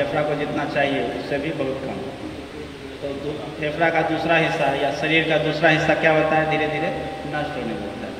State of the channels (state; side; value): identical; both; correlation 1.00